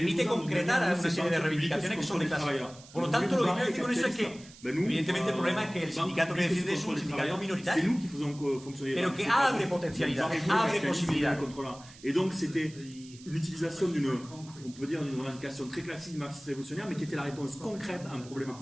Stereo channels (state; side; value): noise; right; hiss, 21 dB below the sound